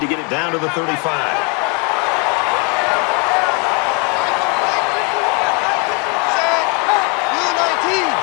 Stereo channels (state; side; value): quieter; right; 33.1 dB